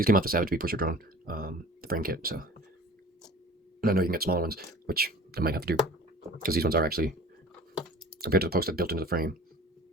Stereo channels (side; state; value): both; normal; correlation 0.44